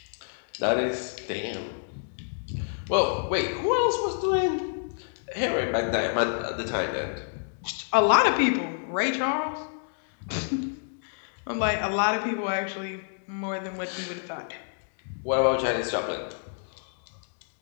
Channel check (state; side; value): silent; right; digital silence